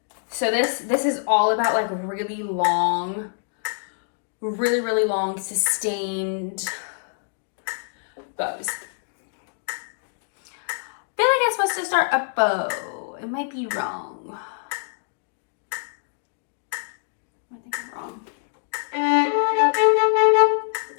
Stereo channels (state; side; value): silent; right; digital silence